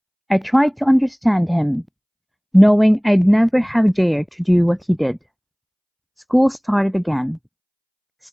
I tried to understand him, knowing I'd never have dared to do what he did. School started again.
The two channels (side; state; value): both; identical; correlation 1.00